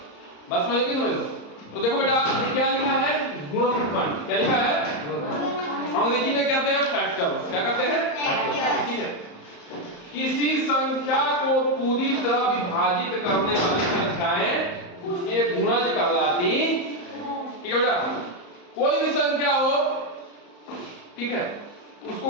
बस समझ लो। तो देखो बेटा, ये क्या लिखा है, गुणनखंड। क्या लिखा है? अंग्रेजी में कहते हैं फैक्टर्स। क्या कहते हैं? फैक्टर्स, ठीक है। किसी संख्या को पूरी तरह विभाजित करने वाली संख्याएं उसके गुणज कहलाती, ठीक है बेटा। कोई भी संख्या हो, ठीक है, उसको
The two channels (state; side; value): late; right; 34 ms